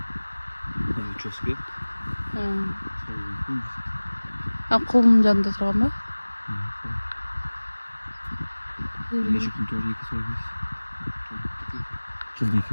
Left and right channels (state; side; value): inverted; both; correlation -1.00